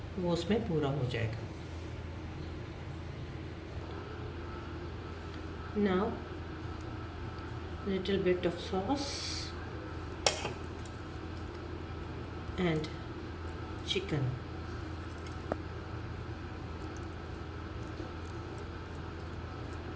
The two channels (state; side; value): identical; both; correlation 1.00